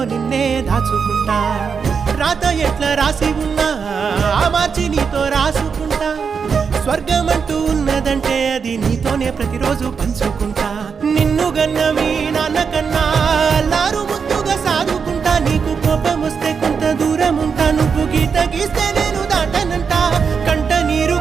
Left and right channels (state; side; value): quieter; left; 6.0 dB